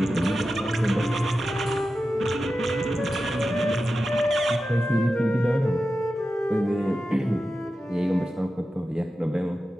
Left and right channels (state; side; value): normal; both; correlation 0.92